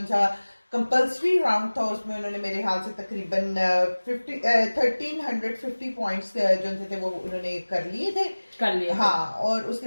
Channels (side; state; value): both; inverted; correlation -1.00